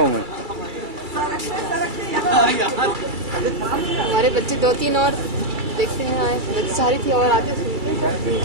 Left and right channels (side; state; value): left; late; 2.3 ms